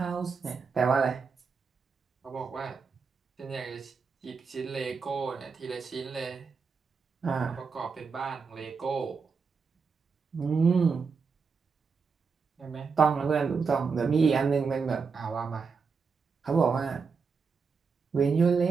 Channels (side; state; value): left; quieter; 5.3 dB